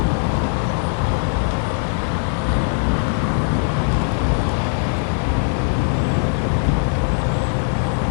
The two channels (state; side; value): silent; right; 55 dB below the other